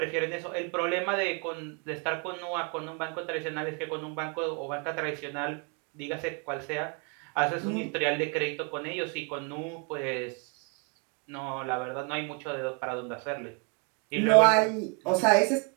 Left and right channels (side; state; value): left; quieter; 34.5 dB